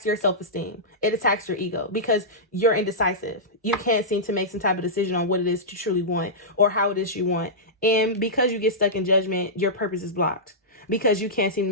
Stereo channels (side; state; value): both; normal; correlation -0.14